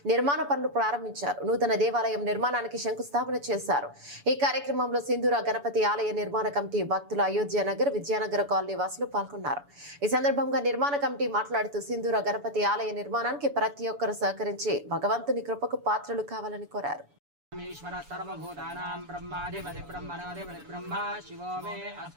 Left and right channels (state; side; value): late; left; 7.0 ms